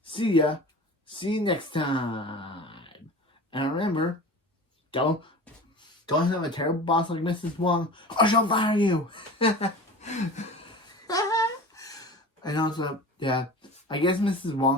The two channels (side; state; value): both; normal; correlation 0.36